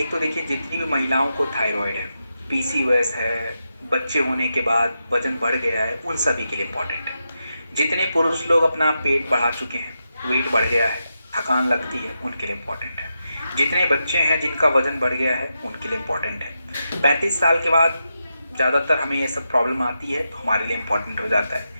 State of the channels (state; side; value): inverted; both; correlation -0.87